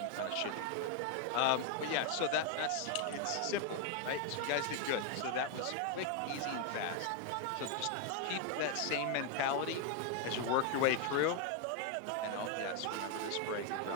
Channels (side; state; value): both; different; correlation 0.01